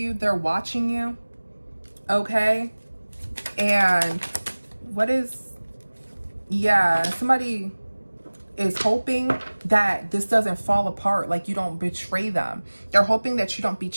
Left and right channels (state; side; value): inverted; both; correlation -1.00